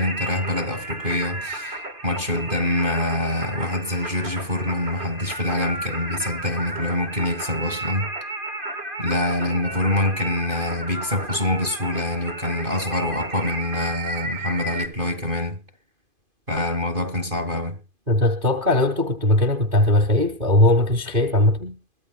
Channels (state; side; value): late; left; 2.5 ms